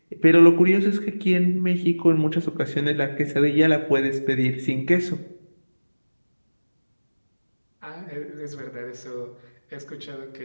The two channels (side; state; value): both; inverted; correlation -1.00